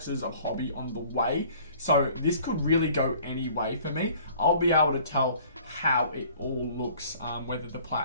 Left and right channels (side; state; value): both; inverted; correlation -0.53